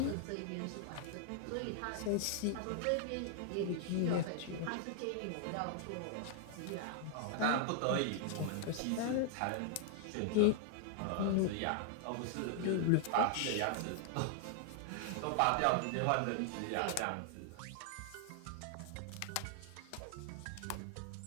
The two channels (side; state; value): both; different; correlation 0.00